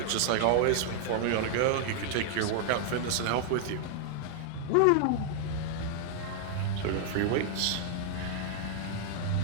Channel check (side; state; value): both; different; correlation 0.00